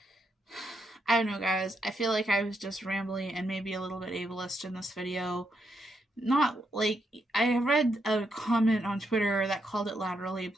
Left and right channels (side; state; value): both; normal; correlation 0.80